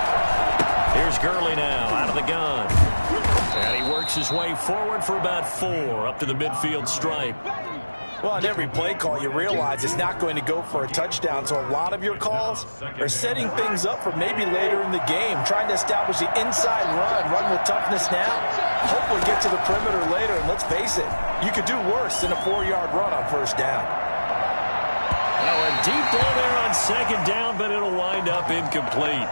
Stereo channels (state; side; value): inverted; both; correlation -1.00